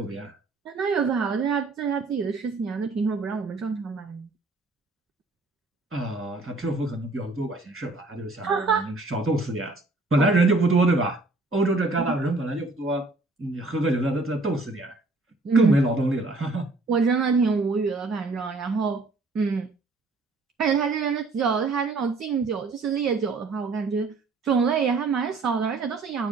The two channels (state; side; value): quieter; left; 3.4 dB